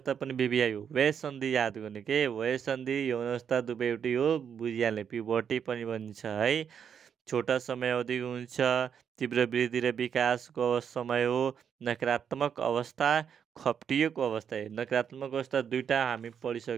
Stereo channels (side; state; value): left; quieter; 7.8 dB